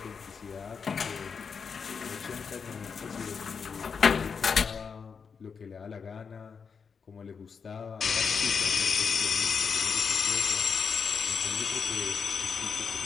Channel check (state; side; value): quieter; right; 5.9 dB